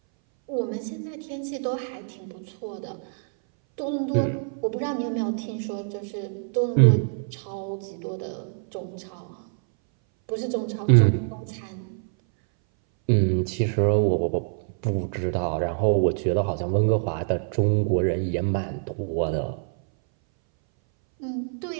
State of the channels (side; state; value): left; silent; 60 dB below the other